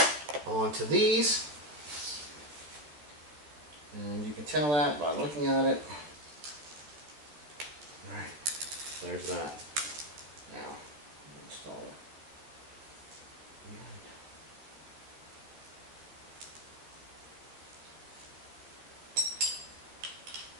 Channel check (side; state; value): left; late; 13 ms